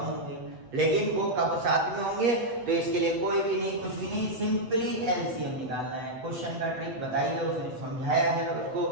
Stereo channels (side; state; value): left; late; 7.9 ms